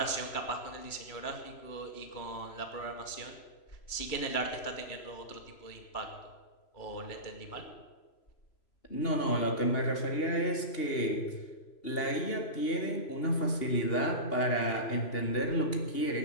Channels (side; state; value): right; late; 3.0 ms